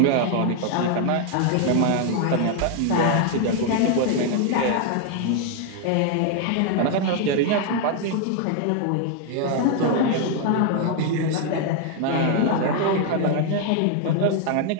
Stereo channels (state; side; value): different; both; correlation 0.00